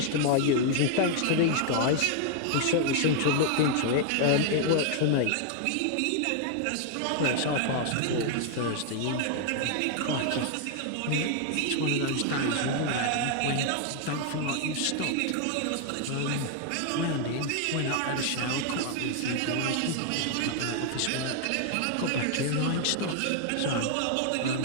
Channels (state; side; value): different; both; correlation 0.00